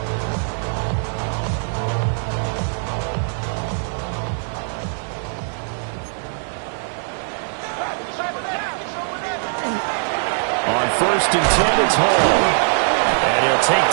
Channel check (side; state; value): left; silent; 60 dB below the other